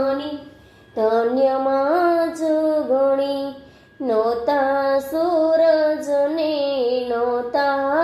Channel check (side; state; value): both; identical; correlation 1.00